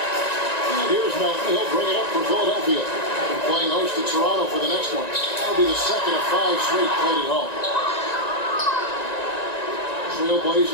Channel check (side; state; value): right; late; 1.9 ms